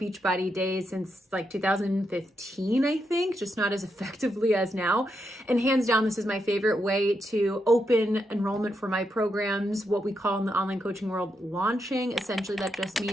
days, since like 2015, I think, just not as effectively as now. And hands down, this is my favorite way to open enrollment for my programs, what we call in the online coaching world, launching. Essentially, that just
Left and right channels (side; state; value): both; normal; correlation 0.82